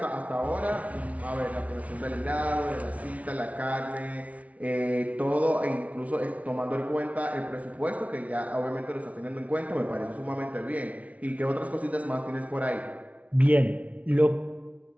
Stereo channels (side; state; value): left; late; 0.067 ms